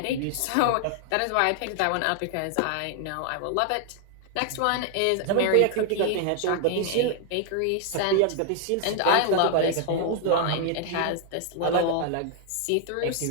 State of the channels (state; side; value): different; both; correlation 0.00